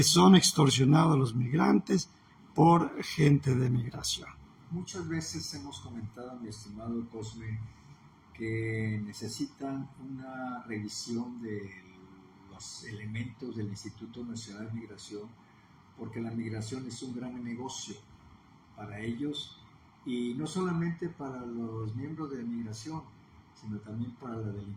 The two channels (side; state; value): both; identical; correlation 1.00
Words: son extorsionados los migrantes por gente de migración. Muchas veces hemos comentado, mi estimado Cosme, que necesitan una revisión de los elementos del Instituto Nacional de Migración, porque la migración es un gran negocio para ellos, y no solamente para los miembros de migración, sino también para la